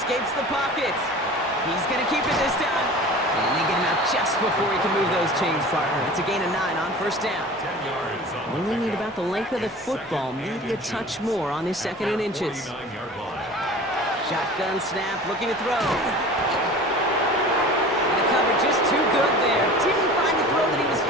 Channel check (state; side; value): normal; both; correlation 0.40